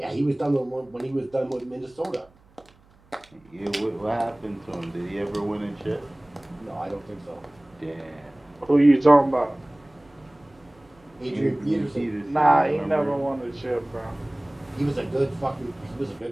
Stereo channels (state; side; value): noise; right; hum, 30 dB below the sound